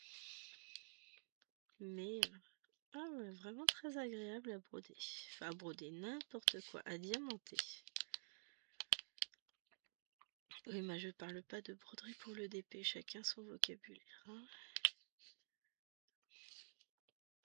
Mais ah ouais, vraiment très agréable à broder. Enfin à broder n'importe quoi, à diamanter. Oui, mais je parle pas de broderie pour le DP, chacun son vocabulaire. Hein.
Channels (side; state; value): left; silent; digital silence